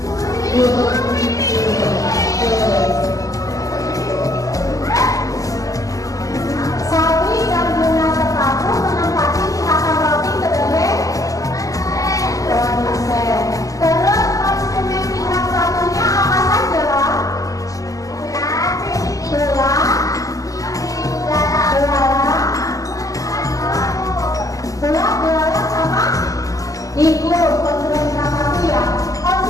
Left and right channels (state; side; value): late; right; 0.17 ms